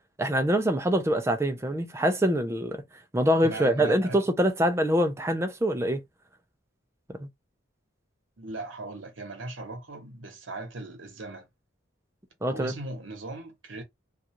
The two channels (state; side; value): normal; both; correlation 0.69